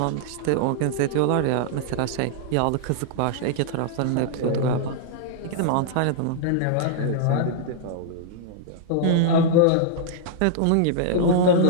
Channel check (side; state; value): both; different; correlation -0.01